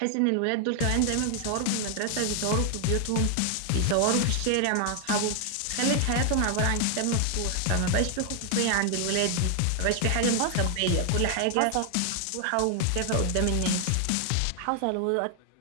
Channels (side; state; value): both; different; correlation 0.00